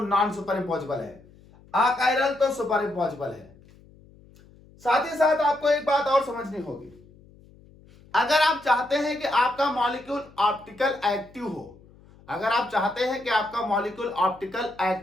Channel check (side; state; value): left; noise; hum, 25 dB below the sound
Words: नॉन सुपर इम्पॉसिबल है, अकायरल तो सुपर इम्पॉसिबल है। साथ ही साथ आपको एक बात और समझनी होगी, अगर आप चाहते हैं कि आपका मॉलिक्यूल ऑप्टिकल एक्टिव हो, अगर आप चाहते हैं कि आपका मॉलिक्यूल ऑप्टिकल